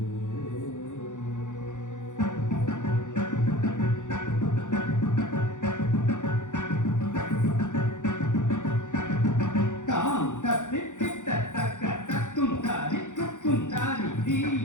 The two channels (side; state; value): right; late; 0.86 ms